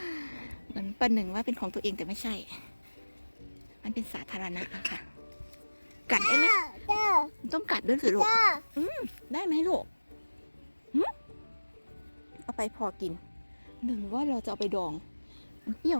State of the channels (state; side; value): inverted; both; correlation -1.00